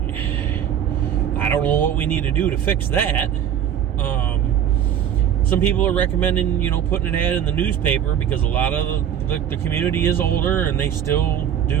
what we need to do to fix that. Some people are recommending, putting an ad in the newspaper because a lot of the community is older and they still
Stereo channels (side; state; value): left; quieter; 9.4 dB